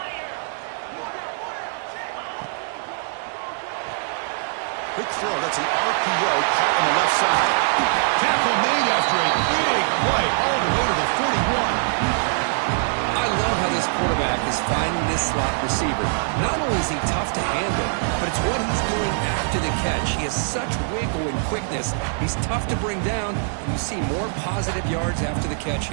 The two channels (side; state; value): left; silent; digital silence